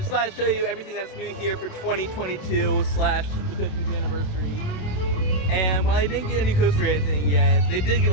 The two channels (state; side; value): late; right; 27 ms